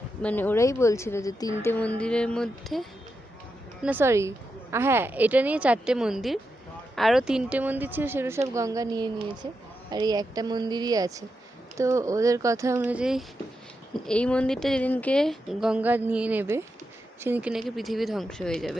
মানে ওরাই বলছিল যে 3টে মন্দিরের মধ্যে, না সরি, হ্যাঁ এটা নিয়ে 4টে মন্দির, আরও 3টে মন্দির ছিল, সেগুলো সব গঙ্গা নিয়ে নিয়েছে, আর এই একটা মন্দিরই আছে। তো ওদের কথা অনুযায়ী এই মন্দিরটা যেদিনকে গঙ্গা নিয়ে নেবে সেদিনকে নাকি পৃথিবী ধ্বংস হয়ে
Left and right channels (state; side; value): normal; both; correlation 0.87